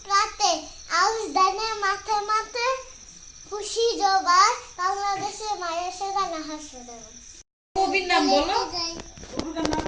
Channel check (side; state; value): both; identical; correlation 1.00